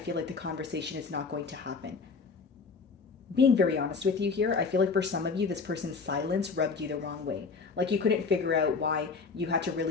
like the conversation is not going to happen. Being very honest with you here, I feel like for some of you, this person's silence rubbed you the wrong way. Like you couldn't figure out why you had to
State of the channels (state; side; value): quieter; right; 4.8 dB